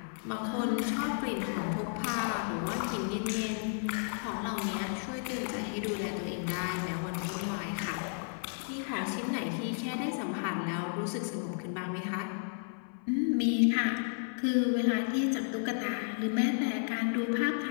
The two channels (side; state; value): right; silent; 56 dB below the other